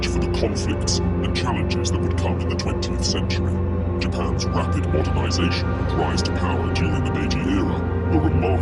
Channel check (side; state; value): both; identical; correlation 1.00